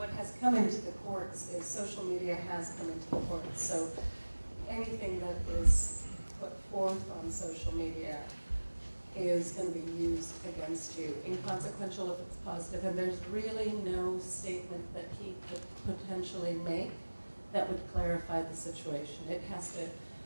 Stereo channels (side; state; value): both; inverted; correlation -1.00